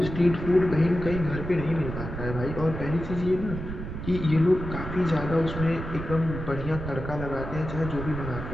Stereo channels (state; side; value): noise; right; rumble, 7 dB below the sound